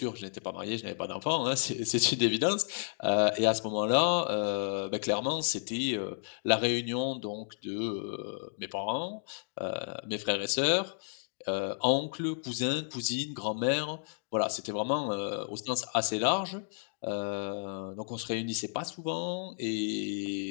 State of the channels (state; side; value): silent; right; digital silence